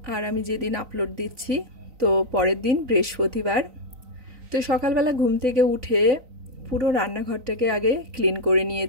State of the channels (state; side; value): late; left; 3.9 ms